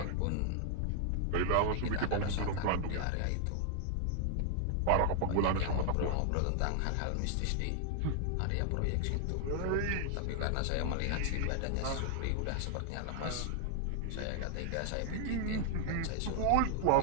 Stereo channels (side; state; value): both; different; correlation 0.00